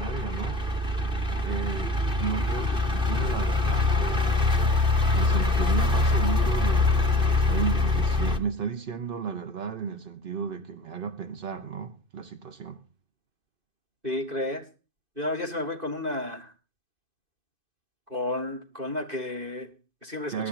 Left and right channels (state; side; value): late; left; 2.5 ms